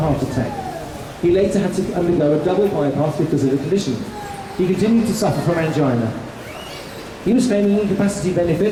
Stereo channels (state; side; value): identical; both; correlation 1.00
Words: attack. He later had to undergo a double bypass because of the condition. He continued to suffer from angina. He was claiming incapacity